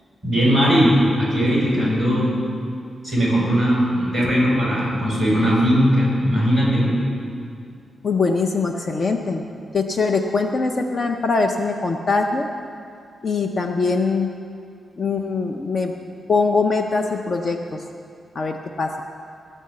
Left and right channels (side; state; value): both; normal; correlation 0.83